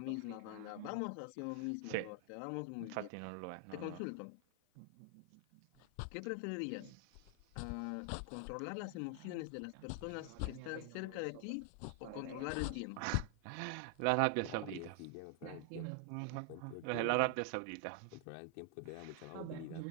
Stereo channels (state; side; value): different; both; correlation 0.00